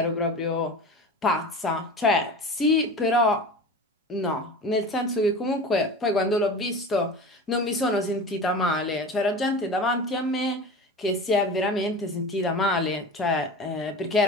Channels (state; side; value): normal; both; correlation 0.33